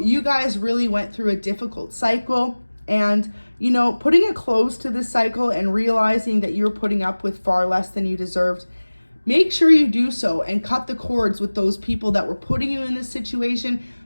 guys really went through a difficult cycle, and you know, putting a close to this cycle and realizing that you're putting up with far less than you deserved, make sure you do so and cut the cords with those people that were putting you in this situation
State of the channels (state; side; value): inverted; both; correlation -1.00